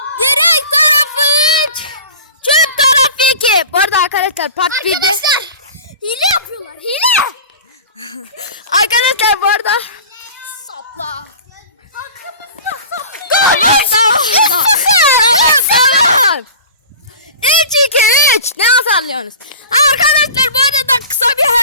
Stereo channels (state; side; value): inverted; both; correlation -0.37